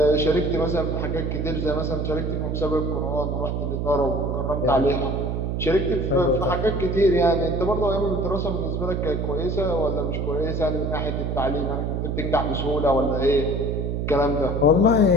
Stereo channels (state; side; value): noise; right; hum, 1 dB below the sound